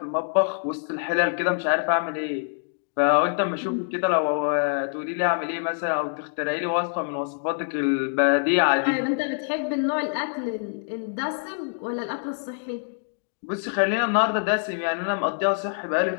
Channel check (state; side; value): silent; right; digital silence